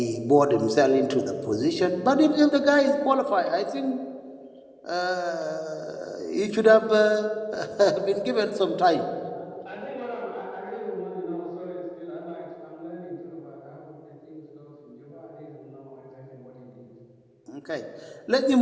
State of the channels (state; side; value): identical; both; correlation 1.00